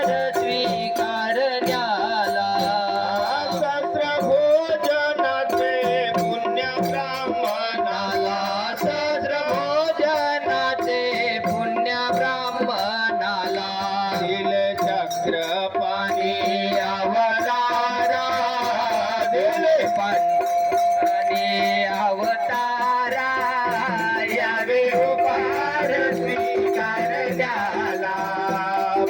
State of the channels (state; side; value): identical; both; correlation 1.00